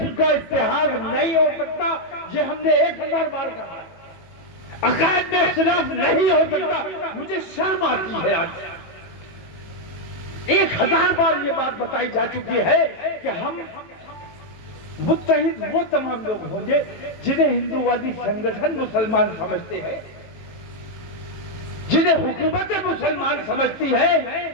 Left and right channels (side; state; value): right; late; 18 ms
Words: کا اتحاد نہیں ہو سکتا، یہ ہم نے 1000 بار کہا۔ عقائد میں اختلاف نہیں ہو سکتا، مجھے شرم آتی ہے آج۔ 1000 بار یہ بات بتائی جا چکی ہے کہ ہم متحد وہ تمام لوگ ہوں گے جنہیں ہندووادی سنگٹھن مسلمان سمجھتے ہیں، جنہیں حکومت مسلمان سمجھتی ہے۔